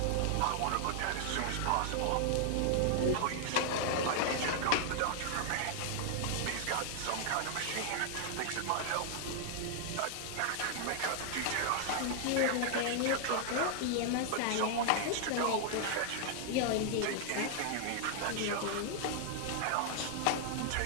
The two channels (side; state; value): both; different; correlation -0.01